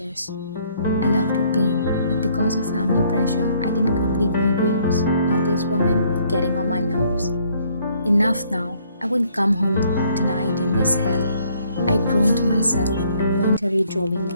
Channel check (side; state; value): both; inverted; correlation -0.65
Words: I love to paint, but because of family pressure, I didn't complete my dreams. Now this woman getting on my nerves. Enough now. I wouldn't come home tonight in this hell. I groaned to myself and mentally drove